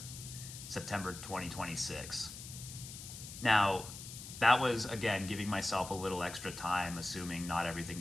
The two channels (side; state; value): left; noise; hiss, 11 dB below the sound